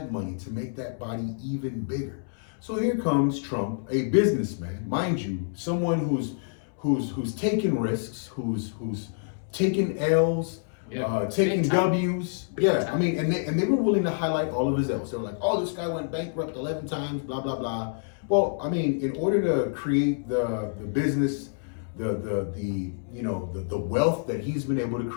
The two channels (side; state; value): right; silent; 60 dB below the other